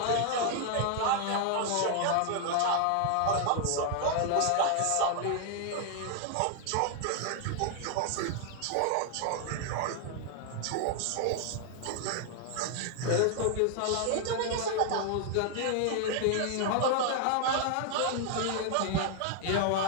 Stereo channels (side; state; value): both; different; correlation 0.00